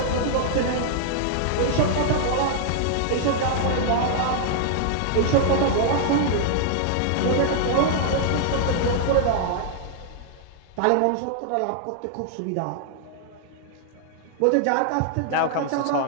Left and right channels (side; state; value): both; different; correlation -0.01